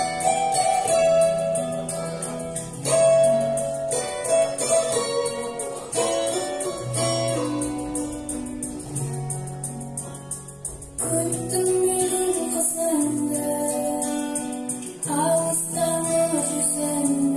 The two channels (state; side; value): identical; both; correlation 1.00